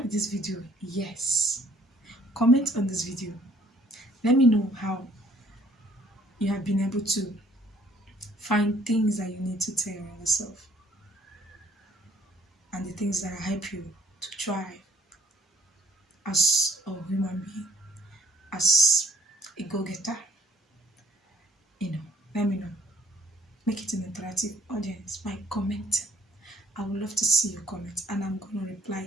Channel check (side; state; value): both; normal; correlation 0.60